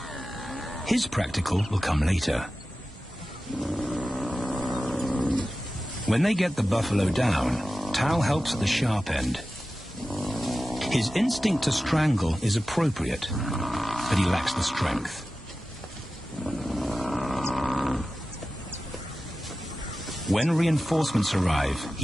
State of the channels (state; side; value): normal; both; correlation 0.94